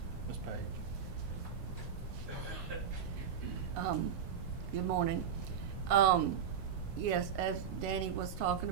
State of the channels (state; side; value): quieter; left; 7.7 dB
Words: Ms. Paige. Good morning. Yes, as Danny was talking